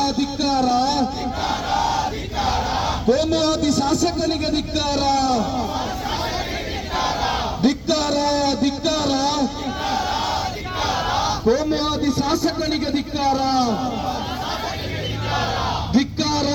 ಕೋಮುವಾದಿ ಶಾಸಕನಿಗೆ ಧಿಕ್ಕಾರ. ಕೋಮುವಾದಿ ಶಾಸಕನಿಗೆ ಧಿಕ್ಕಾರ.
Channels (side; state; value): both; identical; correlation 1.00